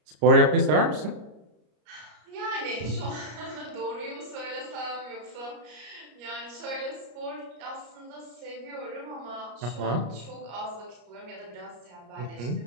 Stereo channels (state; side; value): late; left; 33 ms